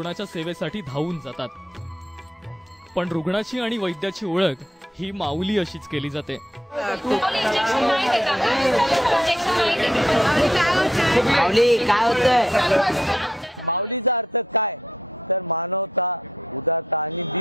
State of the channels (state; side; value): normal; both; correlation 0.73